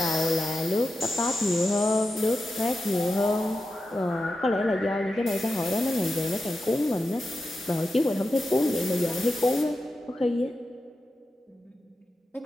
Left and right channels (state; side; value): normal; both; correlation 0.90